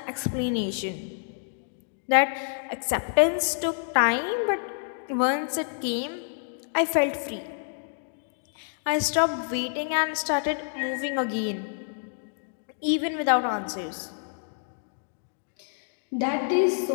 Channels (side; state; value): right; silent; digital silence